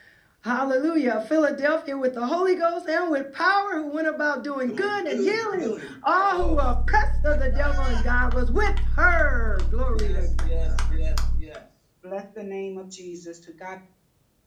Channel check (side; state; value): both; identical; correlation 1.00